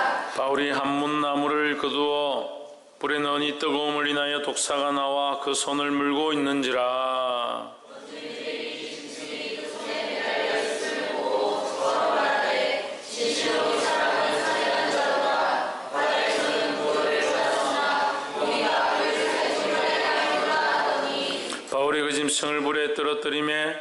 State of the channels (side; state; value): both; identical; correlation 1.00